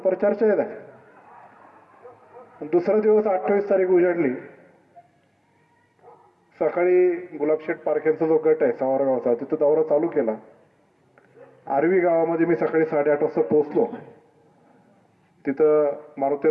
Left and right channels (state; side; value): identical; both; correlation 1.00